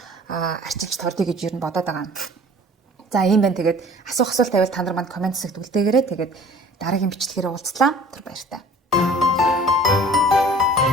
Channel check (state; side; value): normal; both; correlation 0.48